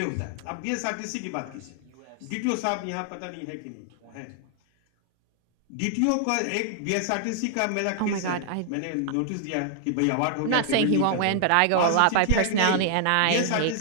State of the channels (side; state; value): both; different; correlation 0.00